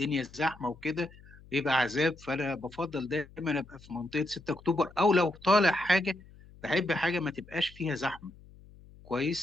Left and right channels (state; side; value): noise; left; hum, 22 dB below the sound